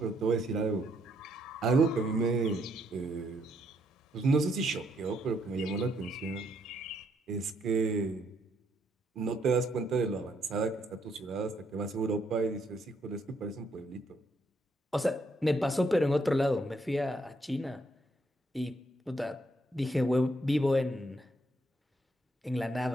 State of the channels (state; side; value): normal; both; correlation 0.73